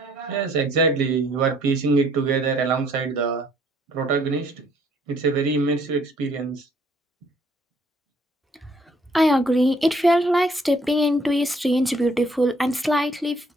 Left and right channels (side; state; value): both; normal; correlation 0.63